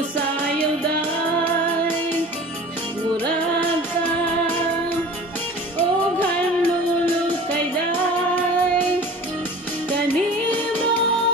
musayaw day, murag ka o hanlulukay day. Kanimo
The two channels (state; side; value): normal; both; correlation 0.41